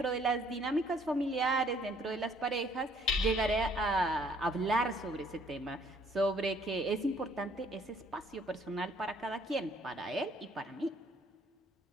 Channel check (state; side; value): normal; both; correlation 0.62